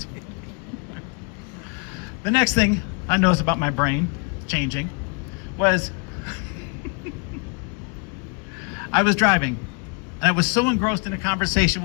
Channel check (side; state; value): right; quieter; 35.3 dB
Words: The next thing I noticed about my brain changing was I was driving and I was so engrossed in a conversation